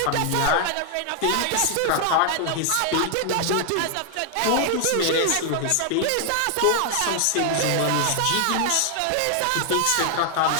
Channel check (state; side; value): different; both; correlation 0.00